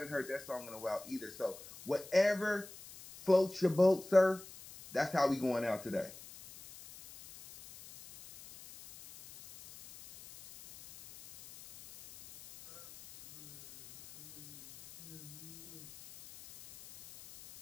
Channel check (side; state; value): left; noise; hiss, 18 dB below the sound